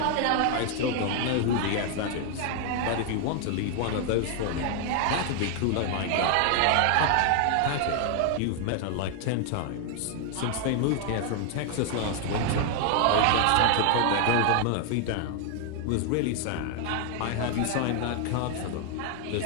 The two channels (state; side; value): different; both; correlation 0.00